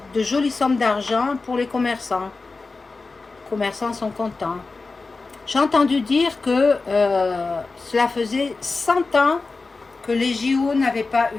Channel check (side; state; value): right; quieter; 3.9 dB